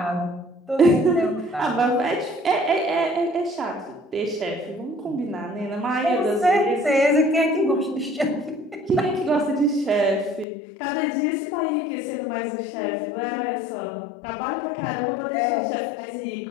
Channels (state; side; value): drops out; right; at 10.5 s